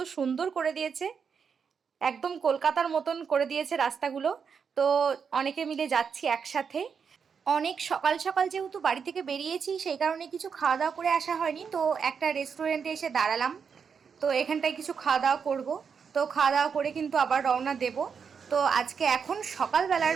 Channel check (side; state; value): left; quieter; 6.4 dB